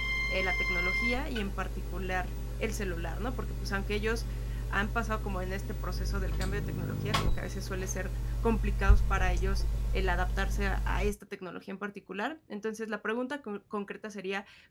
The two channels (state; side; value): identical; both; correlation 1.00